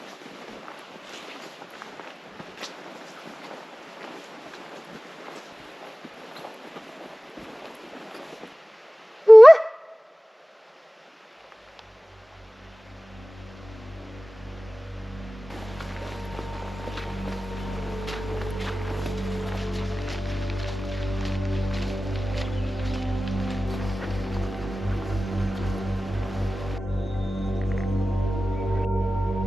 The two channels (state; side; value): normal; both; correlation 0.97